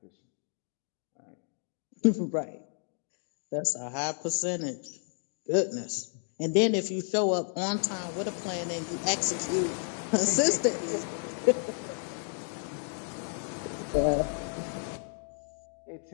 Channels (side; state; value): right; silent; 57 dB below the other